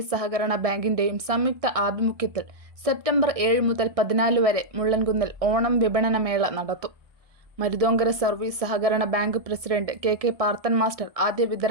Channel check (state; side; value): late; left; 1.6 ms